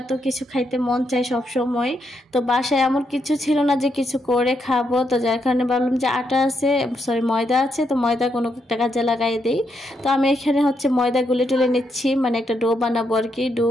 তো কিছু খাইতে মন চায় সব সময়। তো বাসায় এমন কিছু ছিল না যে কিছু করে খাবো, তো যার কারণে ভাবলাম যে আটা আছে, সরি ময়দা আছে, তো ময়দা কোনো একটা কাজে লাগাই দিই। তো আমি এখানে হচ্ছে ময়দা গুলে টুলে নিচ্ছি, মানে একটা ডো বানাবো আর কি। ডো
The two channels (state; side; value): normal; both; correlation 0.79